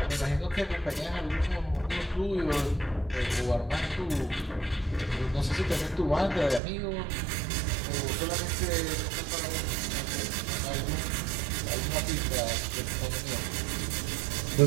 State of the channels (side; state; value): left; drops out; at 6.6 s